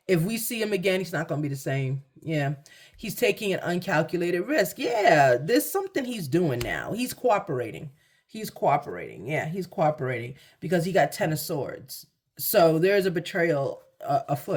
If we see him again, he's not going to be the same. Yeah. He's taking an uncalculated risk. Yeah. There's something he's doing now. He's cooperating. Yeah, he's cooperating because he got 10 of Swords. So there's a betrayal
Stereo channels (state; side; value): identical; both; correlation 1.00